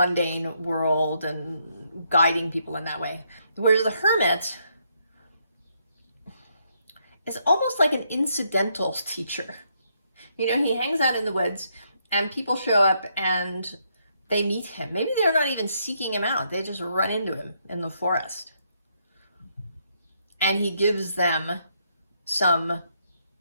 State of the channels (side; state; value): both; inverted; correlation -0.75